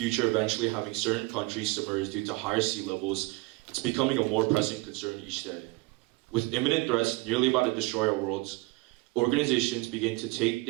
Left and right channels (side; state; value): left; quieter; 23.6 dB